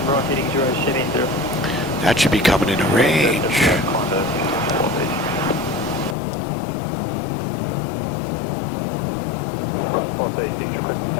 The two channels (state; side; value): drops out; right; at 6.2 s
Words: That should be coming into range.